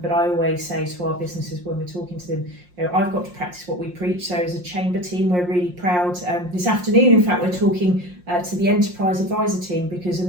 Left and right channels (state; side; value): late; left; 5.6 ms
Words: But I always say to our businesses when we're talking to them, I've got to practice what we preach. So as a chamber team, we're really proud. This afternoon, in fact, we're talking to the enterprise advisor team, because a